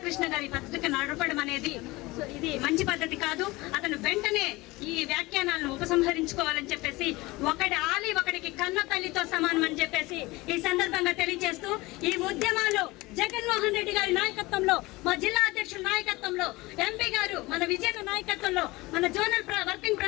గారి పత్రిక నడపడం అనేది ఇది మంచి పద్ధతి కాదు. అతను వెంటనే ఈ వ్యాఖ్యానాలను ఉపసంహరించుకోవాలని చెప్పేసి, ఒకటి ఆలి ఒకటికి కన్న తల్లితో సమానం అని చెప్పేసి ఈ సందర్భంగా తెలియజేస్తూ, ఈ ఉద్యమాలు జగన్మోహన్ రెడ్డి గారి నాయకత్వంలో, మా జిల్లా అధ్యక్షుల నాయకత్వంలో, ఎంపీ గారు మన విజయన నాయకత్వంలో, మన జోనల్ వర్కింగ్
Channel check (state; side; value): quieter; right; 21.5 dB